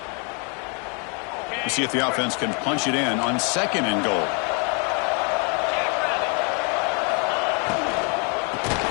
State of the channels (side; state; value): right; quieter; 36.2 dB